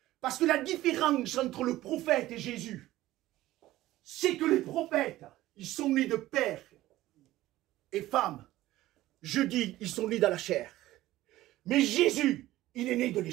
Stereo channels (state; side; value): quieter; left; 15.8 dB